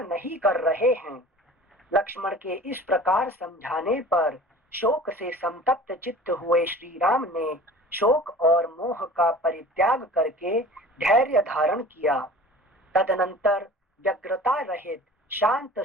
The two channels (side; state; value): both; normal; correlation 0.42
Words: नहीं कर रहे हैं। लक्ष्मण के इस प्रकार समझाने पर शोक से संतप्त चित्त हुए श्री राम ने शोक और मोह का परित्याग करके धैर्य धारण किया। तदनंतर व्यग्रता रहित शांत